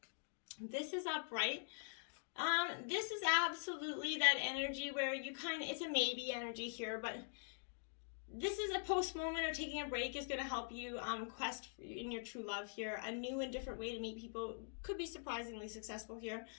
This is upright. This is absolutely that energy where you it's a maybe energy here, but This is a post moment, or taking a break is going to help you quest in your true love here. A new and different way to meet people could be surprisingly successful here.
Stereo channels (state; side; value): silent; right; digital silence